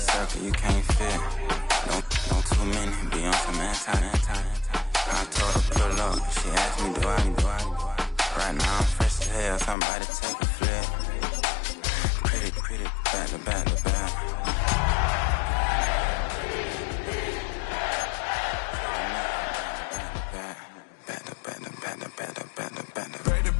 you can't fit. Don't too many be on some anti. I told her pull up. She asked me, do I? Right now I'm fresh as hell. Somebody take a flip. Pretty, back to back to back.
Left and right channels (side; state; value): right; drops out; at 9.8 s